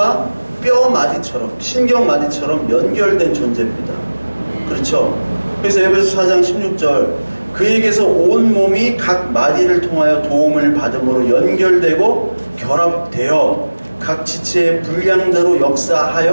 뼈 마디처럼 신경 마디처럼 연결된 존재입니다. 그렇죠? 그래서 에베소 4장 16절 그에게서 온 몸이 각 마디를 통하여 도움을 받음으로 연결되고 결합되어 각 지체의 분량대로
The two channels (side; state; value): both; inverted; correlation -1.00